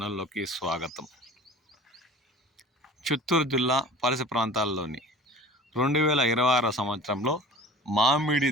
స్వాగతం. చిత్తూరు జిల్లా పరిసర ప్రాంతాల్లోని 2026 సంవత్సరంలో మామిడి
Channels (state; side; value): normal; both; correlation 0.41